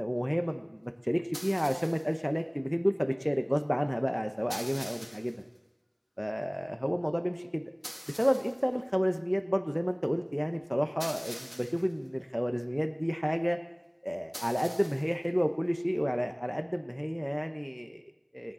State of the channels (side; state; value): both; identical; correlation 1.00